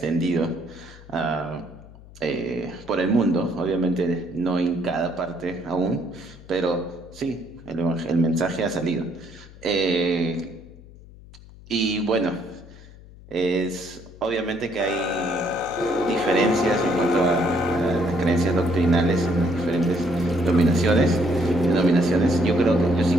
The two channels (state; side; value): noise; left; hum, 20 dB below the sound